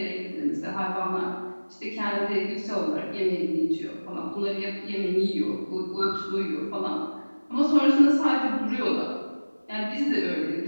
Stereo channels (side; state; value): both; inverted; correlation -1.00